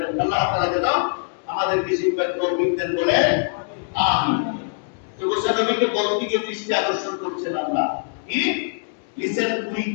আল্লাহ তাআলা যেন আমাদেরকে শিক্ষার তৌফিক দেন, বলে আমিন। তো মুসানবীকে বলতে গিয়ে দৃষ্টি আকর্ষণ করছেন আল্লাহ, কি লিসেন উইথ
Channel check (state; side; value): silent; right; 63 dB below the other